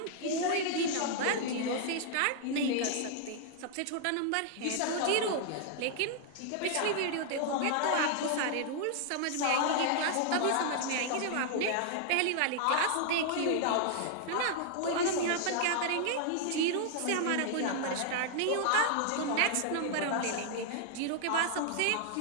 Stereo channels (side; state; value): both; different; correlation 0.00